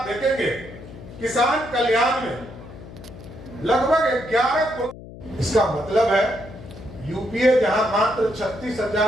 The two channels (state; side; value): noise; left; hum, 16 dB below the sound